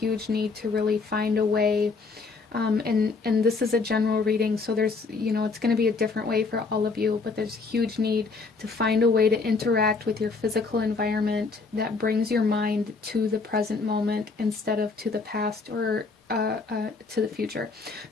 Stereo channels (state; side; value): quieter; right; 4.3 dB